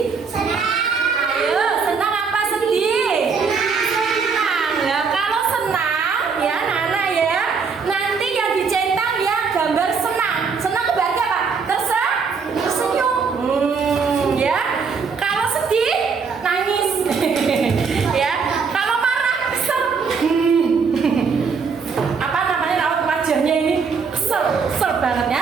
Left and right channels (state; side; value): quieter; left; 5.4 dB